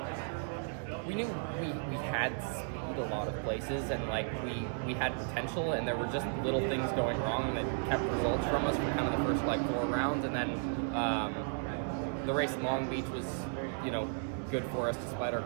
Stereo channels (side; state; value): left; silent; 55 dB below the other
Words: we knew we had speed a lot of places, and like we had potential, and there were just little things going wrong that kept results from us for kind of the first like 4 rounds, and then the race in Long Beach was, good for us despite our